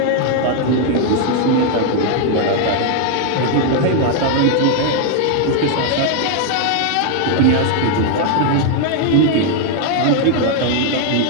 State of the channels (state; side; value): different; both; correlation 0.00